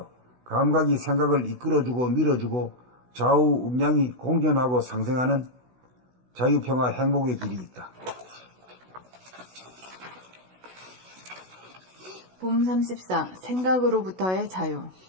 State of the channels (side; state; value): left; late; 16 ms